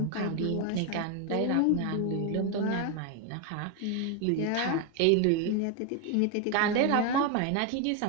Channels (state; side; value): different; both; correlation 0.01